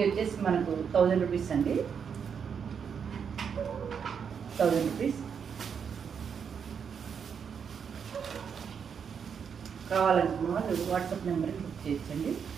వచ్చేసి మనకు 1000 రూపీస్ అండి. 1000 రూపీస్. కావాలనుకున్న వాళ్ళు వాట్సాప్ నెంబర్కి బుక్ చేయొచ్చండి.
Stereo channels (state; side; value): quieter; left; 7.0 dB